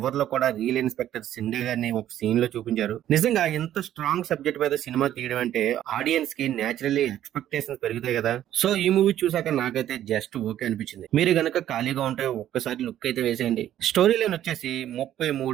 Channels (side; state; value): left; quieter; 11.8 dB